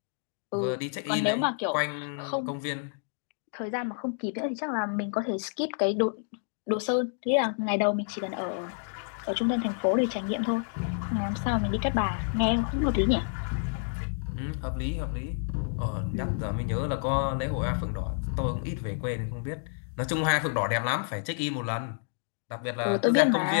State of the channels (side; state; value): right; silent; digital silence